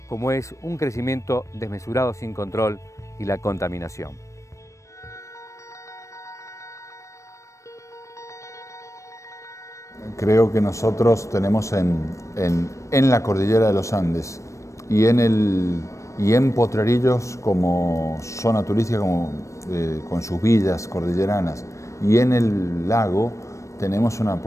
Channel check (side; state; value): right; late; 0.15 ms